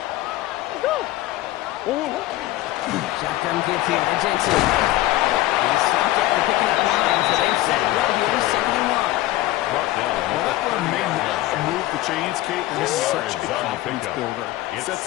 Shotgun give here to Jensen. He's stopped after picking up 9, so they've set it right here, 2nd and 1. Well, that run may not move the chains, Kate. This is such a confidence builder. It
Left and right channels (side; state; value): right; quieter; 16.5 dB